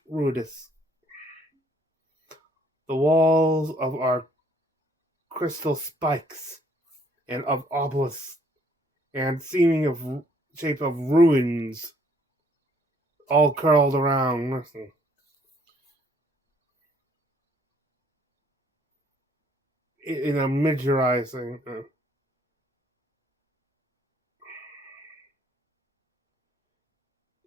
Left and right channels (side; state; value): both; normal; correlation 0.63